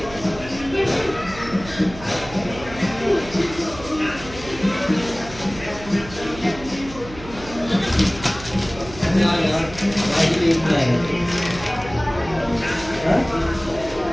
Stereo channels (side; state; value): right; noise; hum, 15 dB below the sound